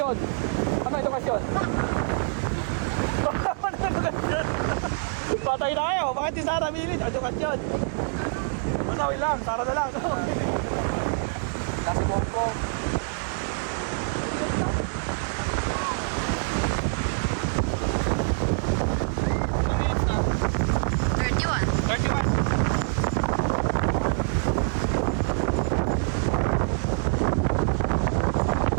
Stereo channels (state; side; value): silent; left; 61 dB below the other